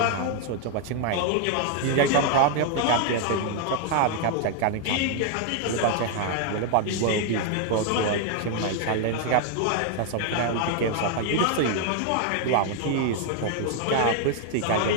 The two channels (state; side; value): different; both; correlation 0.00